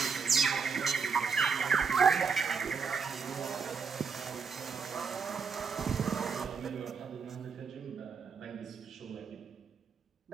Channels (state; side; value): quieter; left; 5.7 dB